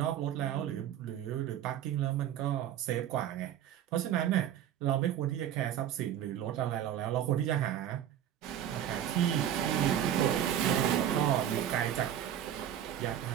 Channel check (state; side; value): quieter; left; 10.5 dB